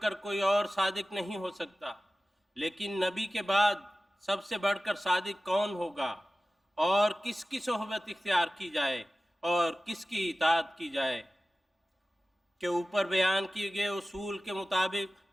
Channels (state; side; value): normal; both; correlation 0.96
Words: کر کوئی اور صادق نہیں ہو سکتا، لیکن نبی کے بعد سب سے بڑھ کر صادق کون ہوگا اور کس کی صحبت اختیار کی جائے اور کس کی اطاعت کی جائے؟ کہ اوپر بیان کیے گئے اصول کے مطابق